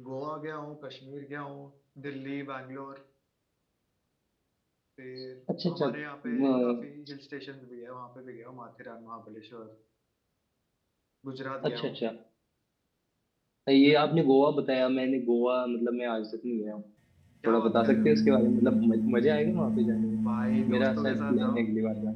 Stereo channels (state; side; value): identical; both; correlation 1.00